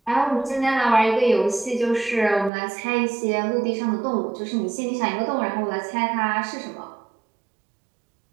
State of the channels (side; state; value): left; drops out; at 2.5 s